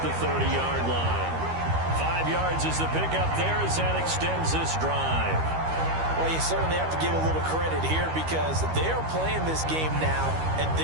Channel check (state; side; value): late; left; 13 ms